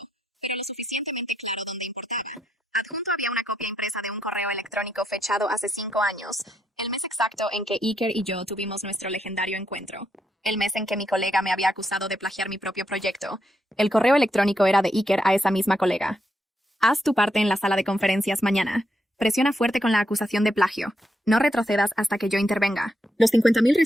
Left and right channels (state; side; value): normal; both; correlation 0.80